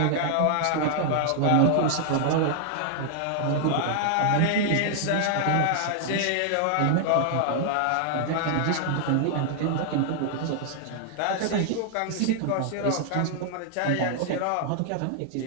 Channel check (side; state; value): both; different; correlation 0.00